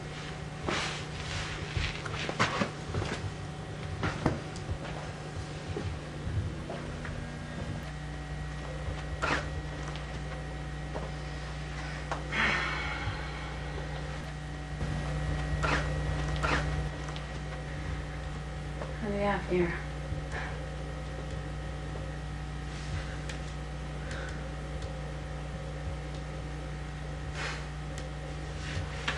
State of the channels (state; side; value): identical; both; correlation 1.00